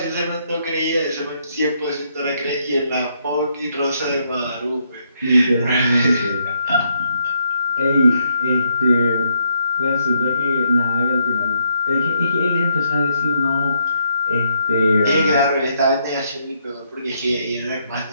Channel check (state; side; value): inverted; both; correlation -0.75